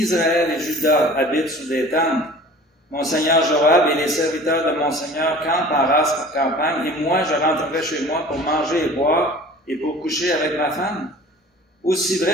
et Juda habitent sous des tentes. Mon seigneur Joab et les serviteurs de mon seigneur campent en race campagne, et moi je rentrerai chez moi pour manger et boire, et pour coucher avec ma femme. Aussi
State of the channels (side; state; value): both; normal; correlation 0.44